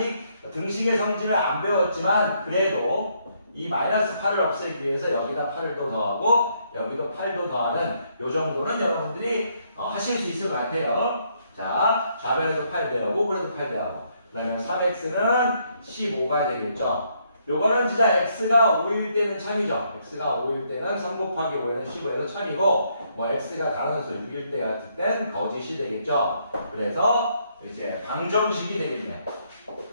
등식의 성질을 안 배웠지만 그래도 이 마이너스 8을 없애기 위해서 여기다 8을 또 더하고 여기도 8도 더하는 요 정도는 여러분들이 하실 수 있을 것 같아요. 자, 좌변에도 8 더하고 우변에도 8 더하고 그러면 3x는 15가 되겠죠. 요거는 진짜 x가 5일 때는 참이죠. x가 5일 때는 3 곱하기 5에는 15에서 참이고 뭐 x가 단원수 6일 때 같을 땐 거짓이 되겠죠. 그래서 이제 방정식이 되겠네요.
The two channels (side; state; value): both; inverted; correlation -0.72